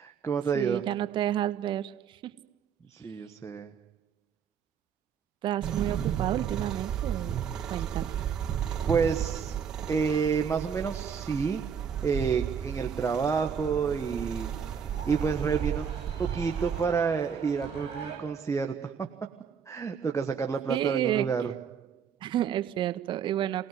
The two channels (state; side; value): quieter; left; 7.1 dB